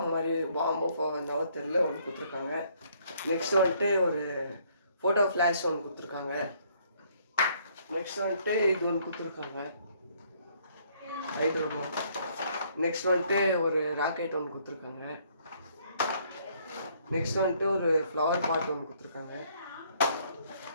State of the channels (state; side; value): inverted; both; correlation -0.65